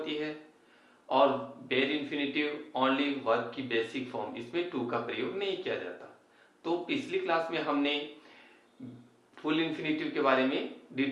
है और बेयर इन्फिनिटिव ओनली वर्ब की बेसिक फॉर्म, इसमें टू का प्रयोग नहीं किया जाता। तो पिछली क्लास में हमने फुल इन्फिनिटिव के बारे में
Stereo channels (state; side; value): identical; both; correlation 1.00